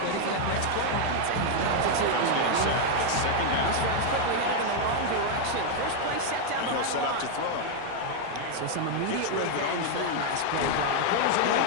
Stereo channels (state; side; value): different; both; correlation 0.00